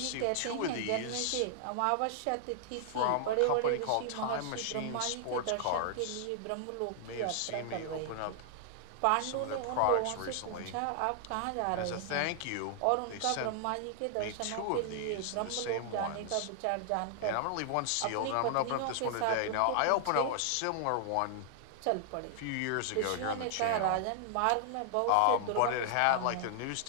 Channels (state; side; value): different; both; correlation 0.00